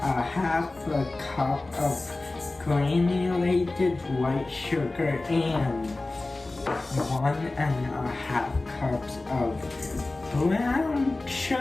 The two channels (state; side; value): quieter; right; 3.1 dB